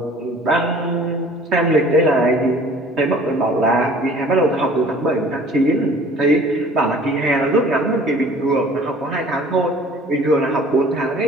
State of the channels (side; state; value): both; normal; correlation 0.50